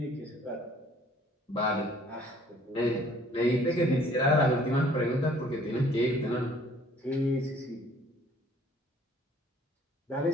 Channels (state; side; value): normal; both; correlation 0.57